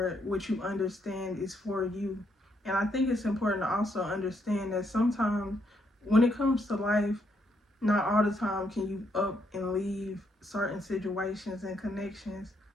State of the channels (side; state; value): both; normal; correlation 0.75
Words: what you understand is for you. And I think it's important to also understand that sometimes when it comes to life, not all the time can you up and leave certain situations and connections.